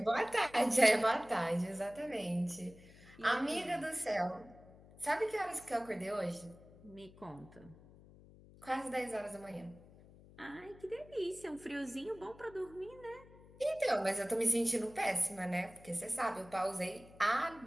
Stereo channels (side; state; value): left; noise; hum, 22 dB below the sound